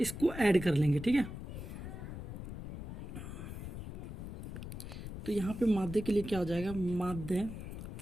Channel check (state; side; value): noise; left; rumble, 8 dB below the sound